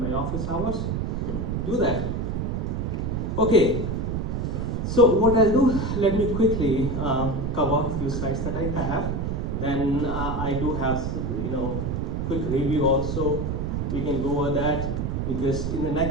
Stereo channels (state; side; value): noise; right; rumble, 1 dB below the sound